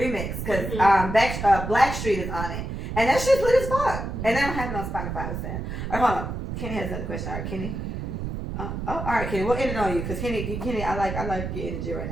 because Blackstreet is on it. And that shit's lit as fuck. And they don't have it on Spotify, what's that? All right, hold on. Kenny has another question. All right, Kenny. All right, Kenny, we'll end it on you, because Kenny, I like your energy right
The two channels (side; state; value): right; noise; rumble, 5 dB below the sound